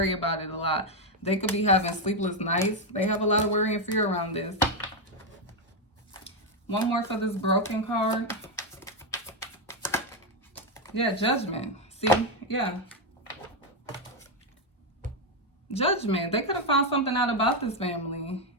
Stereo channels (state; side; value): normal; both; correlation 0.04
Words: about it a lot. They could be having sleepless nights. They have a lot of worry and fear around this. One more for this broken card. Yeah, Judgment. See? Yeah. Judgment. They could have found something out about this family.